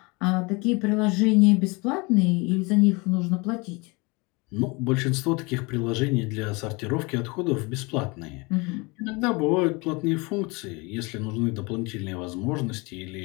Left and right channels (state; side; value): quieter; right; 27.0 dB